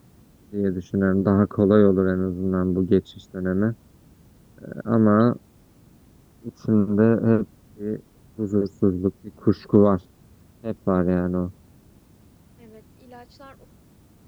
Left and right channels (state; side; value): identical; both; correlation 1.00